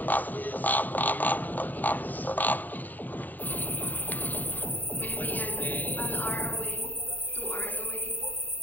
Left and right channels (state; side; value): late; right; 0.086 ms